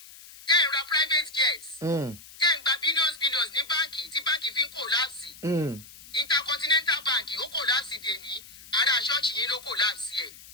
tẹ́ ń ra private jets. Tẹ́ ń gba billions ní báǹkì tí báǹkì fi ń kòláàsì. Intercontinental Bank ó kòláàsì dèní. Ará ṣọ́ọ̀ṣì yín ló kòláàsì ẹ̀.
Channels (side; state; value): left; noise; hiss, 19 dB below the sound